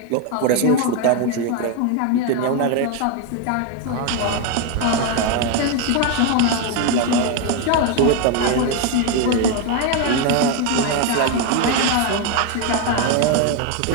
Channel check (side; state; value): both; different; correlation 0.02